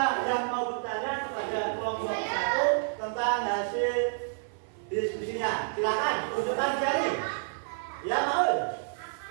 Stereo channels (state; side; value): silent; left; 55 dB below the other